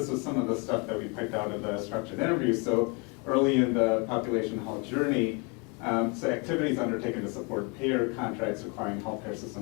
was some of the stuff that we picked out of the structured interviews. So early in the population health journey, so activities undertaken to support payer contracts requiring healthcare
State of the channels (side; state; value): right; quieter; 32.1 dB